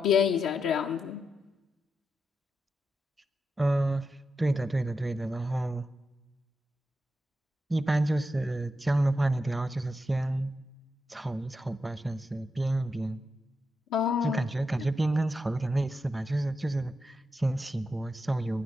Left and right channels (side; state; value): both; normal; correlation 0.86